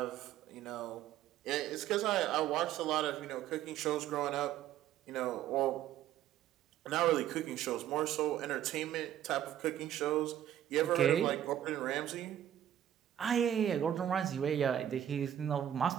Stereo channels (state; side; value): quieter; left; 11.2 dB